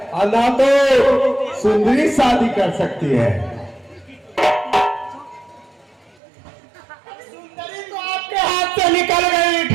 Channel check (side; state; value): left; drops out; at 6.2 s